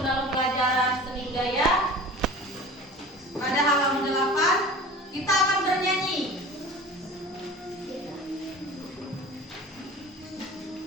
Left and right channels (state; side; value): normal; both; correlation 0.39